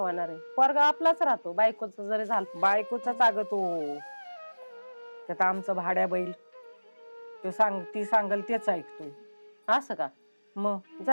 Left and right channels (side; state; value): both; inverted; correlation -1.00